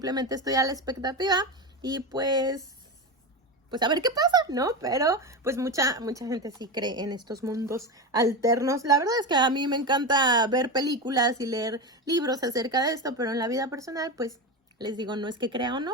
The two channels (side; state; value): both; normal; correlation 0.19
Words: estoy a la expectativa y pues pues a ver qué pasa, ¿no? Pero pues mucha gente sí cree en estos mundos alternos. La verdad es que a mí me encanta ver películas y leer libros acerca de esto, pero en la vida personal, pues les digo, no es que crea o no,